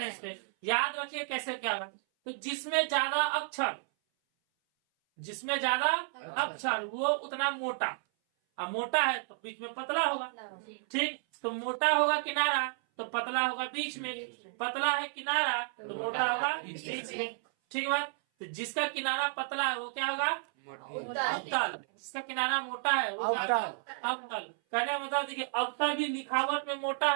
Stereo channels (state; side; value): silent; left; 56 dB below the other